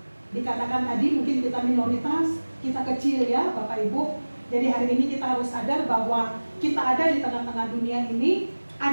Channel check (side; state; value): both; inverted; correlation -1.00